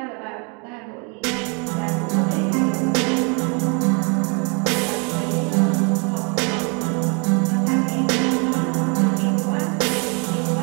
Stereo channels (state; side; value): quieter; left; 33.7 dB